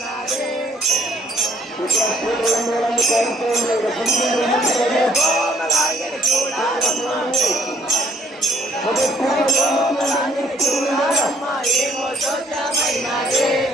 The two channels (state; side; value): normal; both; correlation 0.63